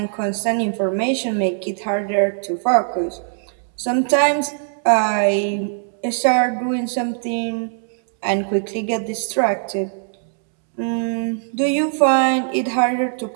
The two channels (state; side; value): silent; left; 65 dB below the other